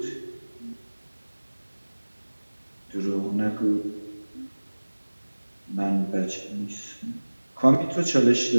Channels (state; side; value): inverted; both; correlation -1.00